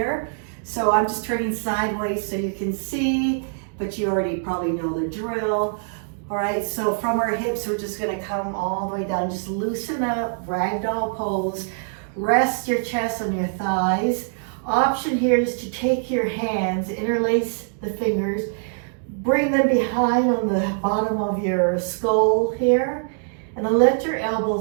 So I'm just turning sideways so you can see, but you already probably know the drill. All right, so from our hips, we're just gonna come all the way down. Just loosen up, ragdoll pose. Rest your chest on your thighs. Option here is to take your hands, interlace the fingers, bring them behind on the bottom of your skull here, and then let your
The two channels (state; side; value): silent; left; digital silence